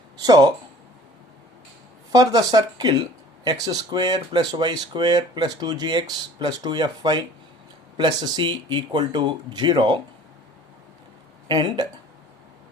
So, for the circle x square plus y square plus 2gx plus 2fy plus c equal to 0, and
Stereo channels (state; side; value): normal; both; correlation 0.48